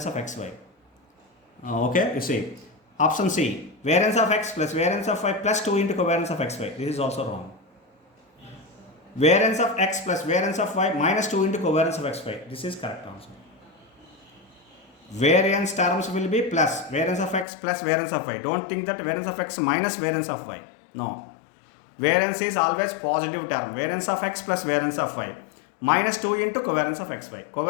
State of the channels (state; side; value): drops out; right; at 17.4 s